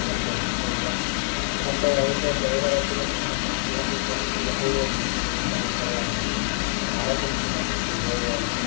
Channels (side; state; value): right; silent; 62 dB below the other